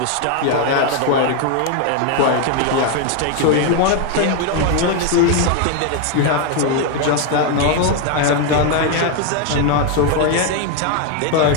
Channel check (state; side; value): different; both; correlation 0.01